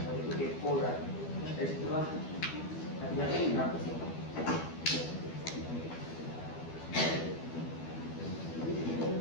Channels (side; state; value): right; late; 12 ms